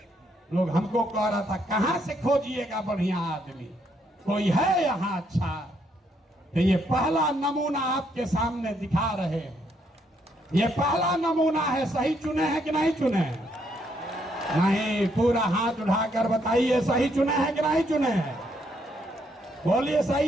लोग हमको कह रहा था कहां से खोजिएगा बढ़िया आदमी, कोई है यहाँ अच्छा? तो ये पहला नमूना आपके सामने दिखा रहे हैं। ये पहला नमूना है। सही चुने हैं कि नहीं चुने हैं? नहीं, पूरा हाथ उठाकर बताइए सही चुने हैं कि नहीं चुने हैं? बोलिए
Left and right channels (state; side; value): normal; both; correlation 0.73